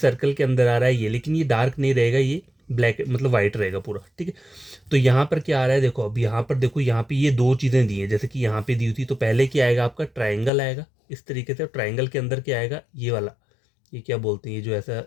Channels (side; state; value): right; drops out; at 10.5 s